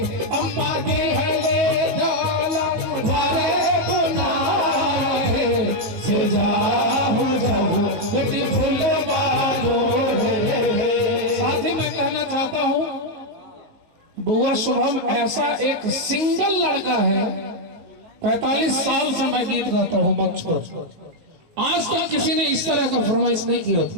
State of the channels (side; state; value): left; late; 18 ms